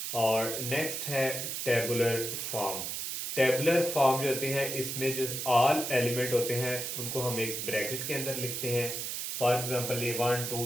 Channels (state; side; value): noise; right; hiss, 4 dB below the sound